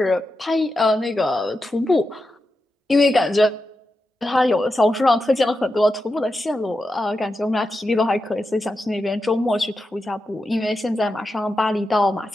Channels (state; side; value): normal; both; correlation 0.89